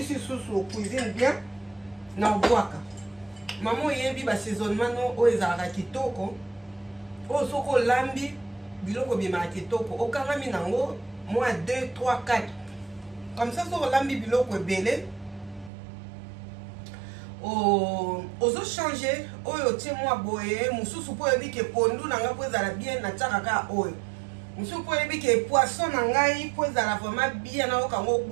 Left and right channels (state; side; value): drops out; left; at 15.7 s